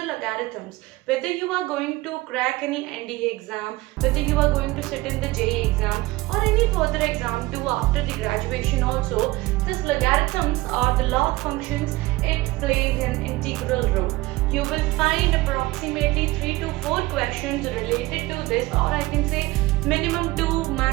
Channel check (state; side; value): quieter; left; 19.9 dB